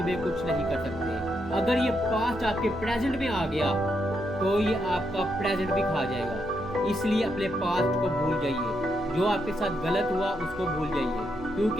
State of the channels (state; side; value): noise; right; hum, 18 dB below the sound